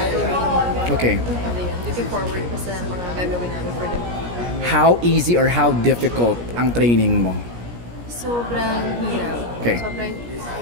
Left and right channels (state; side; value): late; left; 17 ms